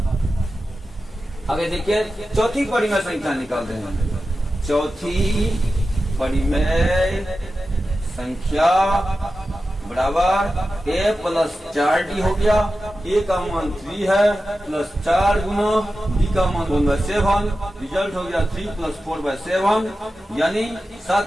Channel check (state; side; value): normal; both; correlation 0.93